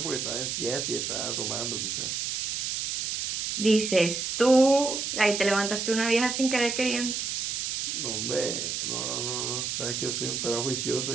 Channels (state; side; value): noise; right; hiss, 2 dB below the sound